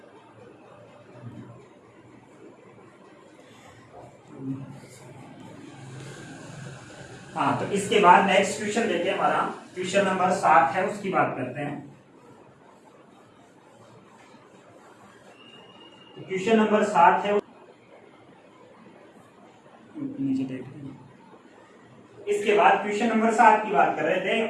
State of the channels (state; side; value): identical; both; correlation 1.00